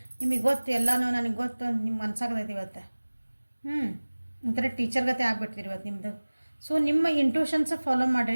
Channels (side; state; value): both; inverted; correlation -1.00